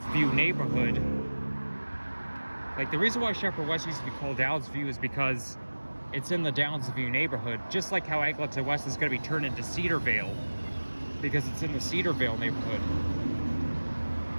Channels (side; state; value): both; inverted; correlation -1.00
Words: neighborhood, like the reason why Sheppard West used to be called Downsview is because it's in the Downsview neighborhood, just like how Eglinton West is going to be turned into Cedarvale, because it's in the Cedarvale neighborhood.